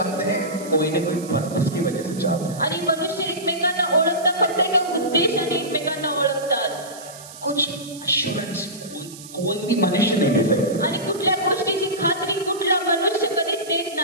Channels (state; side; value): noise; right; hiss, 16 dB below the sound